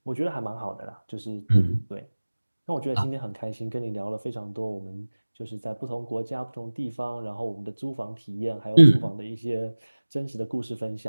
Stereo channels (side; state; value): both; inverted; correlation -1.00